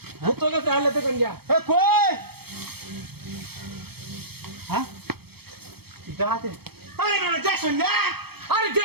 তোকে চালে তো কন্যা এ কই হ্যাঁ পিতা হাতিরা আরে না দেখছো না আরে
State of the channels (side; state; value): left; late; 0.96 ms